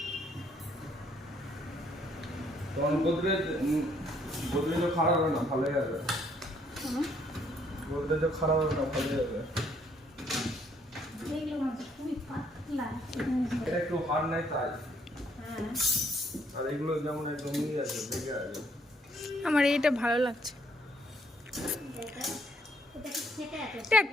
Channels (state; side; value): normal; both; correlation 0.67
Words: গোদরেজ খারাপ হবে না, ভালোই হবে। গোদরেজ খারাপ হবে না, ভালোই হবে। এটা একটু হার্ড নাই তাই। আর এগুলো যেমন একদমই আছে, দেখে আছে। আমার এইটা ভালো লাগছে। এটা